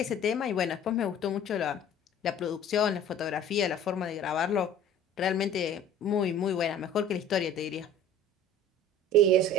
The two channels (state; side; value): normal; both; correlation 0.45